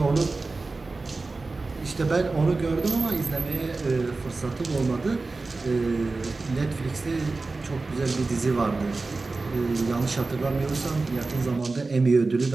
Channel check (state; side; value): quieter; left; 3.6 dB